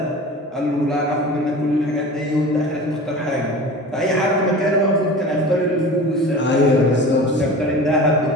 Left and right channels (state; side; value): normal; both; correlation 0.36